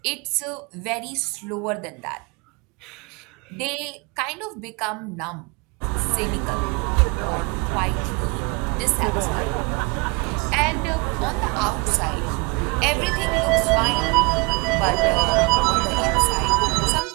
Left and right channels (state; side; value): quieter; left; 28.7 dB